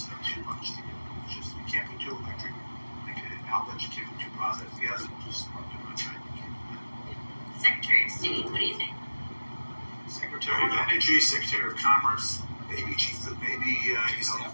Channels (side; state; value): both; inverted; correlation -1.00